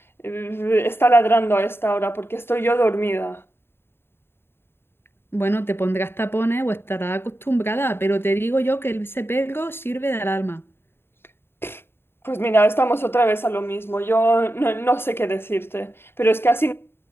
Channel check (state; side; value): late; right; 0.11 ms